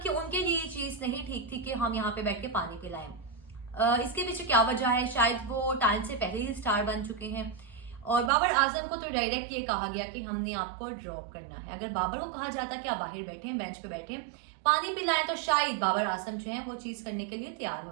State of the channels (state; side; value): drops out; left; at 8.3 s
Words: कि उनके लिए ये चीज नहीं ठीक थी कि हम यहाँ पे बैठ के पानी पिलाएं। इसके पीछे क्या वजह है? शायद वो टाइम से पहले ही स्टार बन चुके हैं। और बाबर आजम को तो डायरेक्ट ये कहा गया कि हमने आपको ड्रॉप करना है। अगर बाबर को कहा जाता कि आप बाहर बैठे, बेंच पे बैठे, पानी पिलाएं, तो शायद बाबर आजम जो है वो चीज करने के लिए तैयार